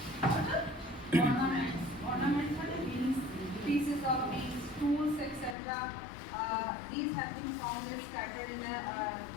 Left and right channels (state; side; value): drops out; right; at 5.6 s